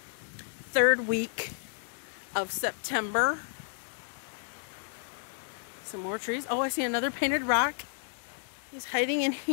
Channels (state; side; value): silent; right; digital silence